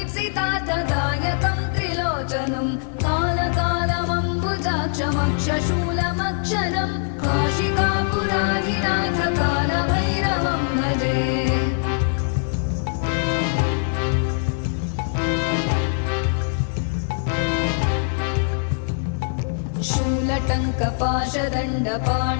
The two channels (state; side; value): silent; right; digital silence